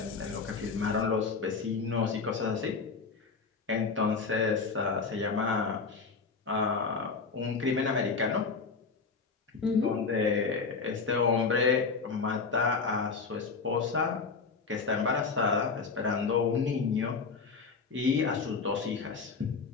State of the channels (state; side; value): quieter; right; 4.8 dB